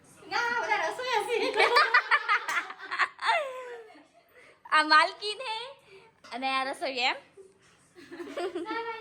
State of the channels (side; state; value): both; identical; correlation 1.00